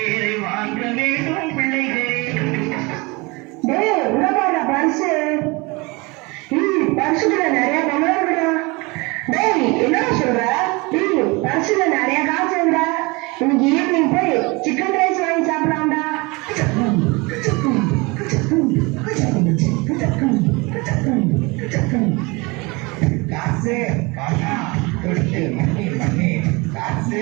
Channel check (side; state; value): left; quieter; 25.9 dB